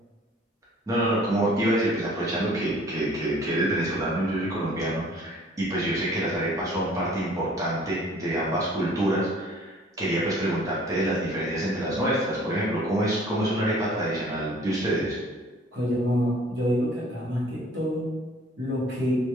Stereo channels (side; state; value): both; normal; correlation 0.53